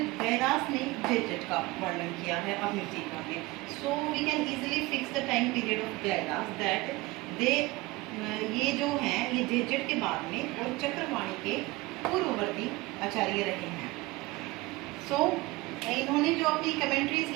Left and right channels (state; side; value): quieter; left; 21.4 dB